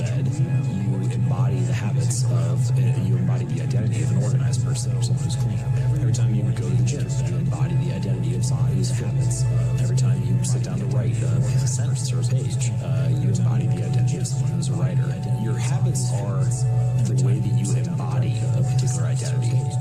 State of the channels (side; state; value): both; identical; correlation 1.00